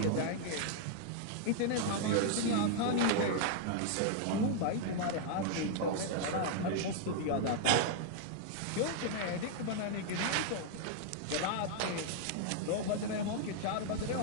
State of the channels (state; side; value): different; both; correlation -0.01